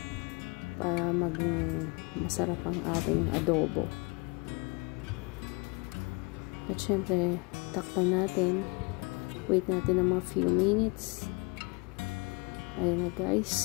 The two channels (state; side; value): quieter; right; 29.9 dB